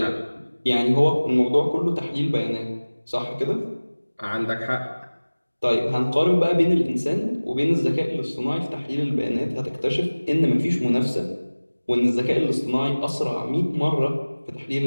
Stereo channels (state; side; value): inverted; both; correlation -1.00